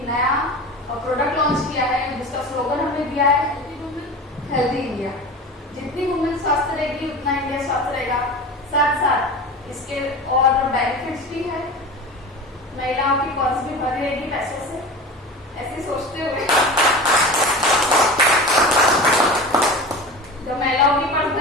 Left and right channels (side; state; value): both; normal; correlation 0.32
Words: नया प्रोडक्ट लॉन्च किया है, जिसका स्लोगन हमने दिया है हेल्दी इंडिया। जितनी वुमेन स्वस्थ रहेगी उतना इंडिया स्वस्थ रहेगा। साथ साथ इसके और बेनिफिट्स भी है। महिलाओं की पर्स भी भरी रहेगी पैसों से, ऐसे सोचते हुए जब महिलाओं की पर्स